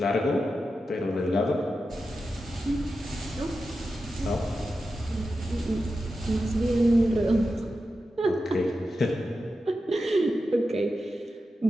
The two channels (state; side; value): normal; both; correlation 0.91